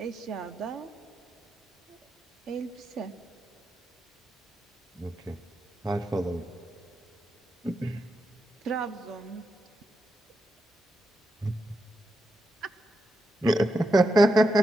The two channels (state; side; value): normal; both; correlation 0.86